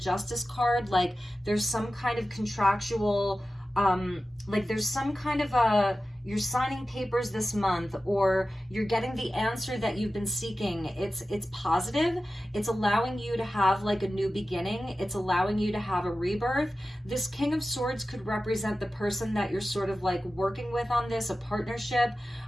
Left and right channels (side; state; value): both; normal; correlation 0.94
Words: card. Like there's some kind of contractual, like there's some kind of you're signing papers this month, or you're getting the answer that you've been seeking. It's positive. It's allowing you to have like a new beginning. It's allowing you to have a rebirth. This King of Swords could represent the person that you're sort of like working with on this, a partnership,